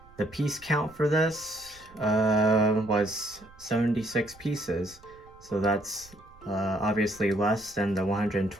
The piece count for this was 76 pieces, so that's obviously less than the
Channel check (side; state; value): right; noise; rumble, 25 dB below the sound